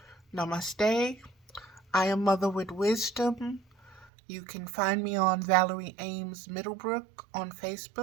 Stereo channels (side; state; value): left; drops out; at 4.1 s